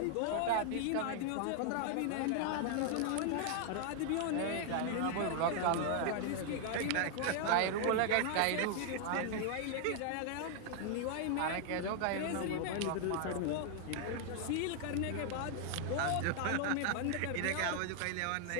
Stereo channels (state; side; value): different; both; correlation 0.00